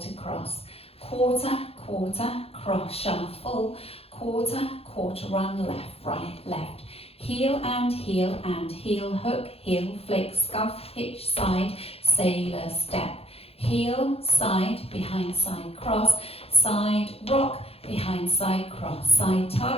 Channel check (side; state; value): right; late; 0.29 ms